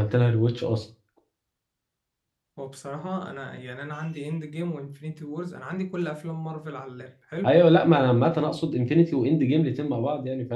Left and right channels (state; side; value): identical; both; correlation 1.00